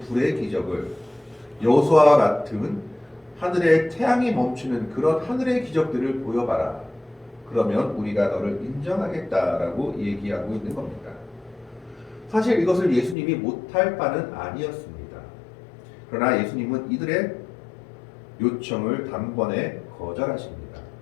불의 기적을, 여호수아와 같은 하늘에 태양이 멈추는 그런 하늘의 기적들을 보여봐라. 그러면 우리가 너를 인정하겠다라고 얘기하고 있는 겁니다. 사실 이것을 예수님이 못할 바는 아니었습니다. 그러나 예수님은 이들의 요청을 단번에 거절하십니다.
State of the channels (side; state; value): right; drops out; at 13.2 s